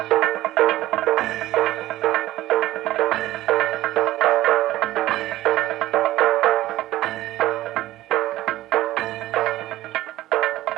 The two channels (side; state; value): left; quieter; 15.5 dB